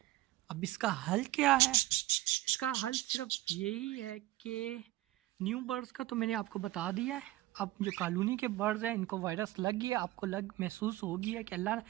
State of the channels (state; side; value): quieter; left; 17.1 dB